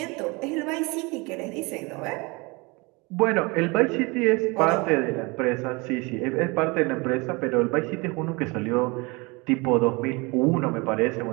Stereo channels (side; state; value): left; quieter; 26.7 dB